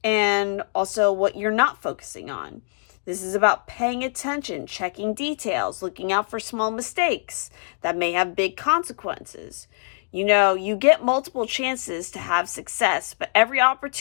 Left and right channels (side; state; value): right; silent; digital silence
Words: and also what you're not focusing on. This is about paying attention, checking details, looking out for small mistakes that may have big consequences. You get multiple chances to have success, but every